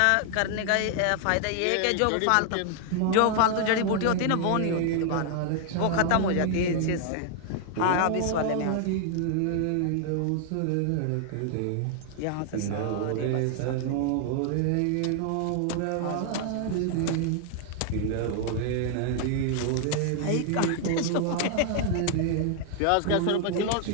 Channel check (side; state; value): both; different; correlation 0.00